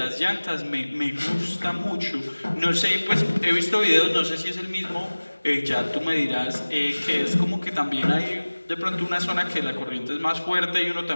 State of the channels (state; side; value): inverted; both; correlation -1.00